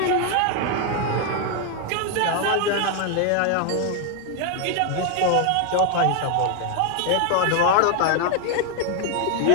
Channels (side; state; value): both; different; correlation 0.01